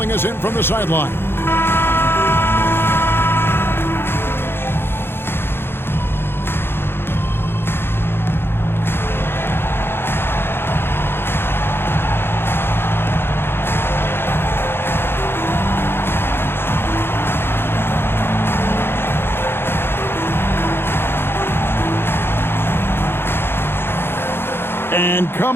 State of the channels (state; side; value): late; right; 0.11 ms